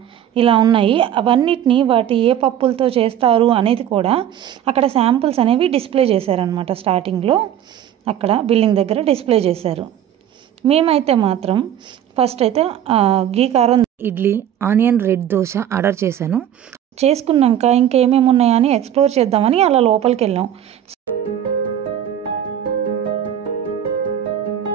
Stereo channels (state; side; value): quieter; left; 10.4 dB